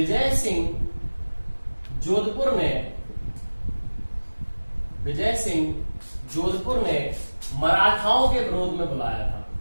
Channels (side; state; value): both; inverted; correlation -1.00